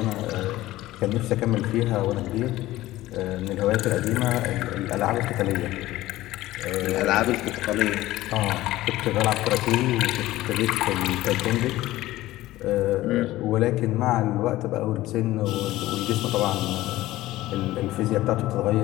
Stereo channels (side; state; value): right; quieter; 16.4 dB